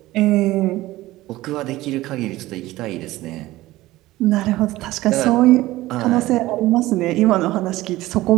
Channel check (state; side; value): quieter; left; 17.4 dB